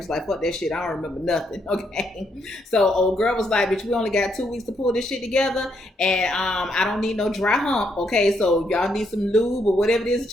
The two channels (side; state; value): both; normal; correlation 0.76